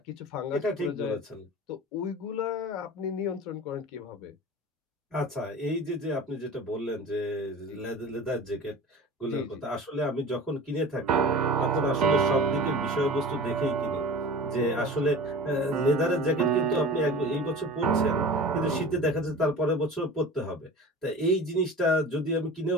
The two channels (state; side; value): normal; both; correlation 0.36